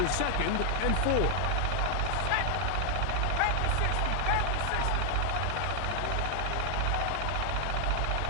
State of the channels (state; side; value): different; both; correlation 0.00